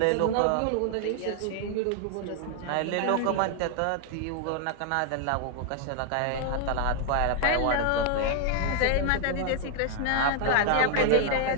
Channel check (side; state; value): both; different; correlation 0.00